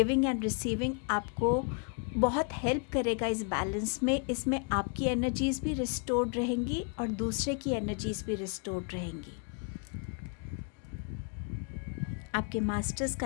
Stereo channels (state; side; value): quieter; right; 39.2 dB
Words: एंड रिसीविंग आपको बहुत हेल्प करेगा इस बैलेंस में। इसमें आपकी एनर्जीज़ भी रिस्टोर्ड रहेंगी और दूसरे की एनर्जीज़ भी रिस्टोर्ड रहेंगी। आपके मास्टर्स